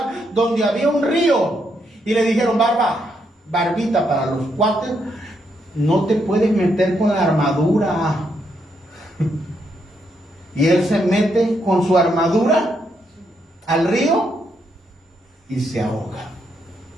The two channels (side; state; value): both; normal; correlation 0.78